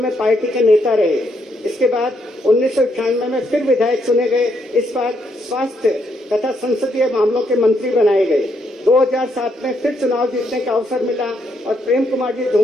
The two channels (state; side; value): normal; both; correlation 0.76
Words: पार्टी के नेता रहे। इसके बाद 1998 में फिर विधायक चुने गए। इस बार स्वास्थ्य तथा संसदीय मामलों के मंत्री बनाए गए। 2007 में फिर चुनाव जीतने का अवसर मिला और प्रेम कुमार जी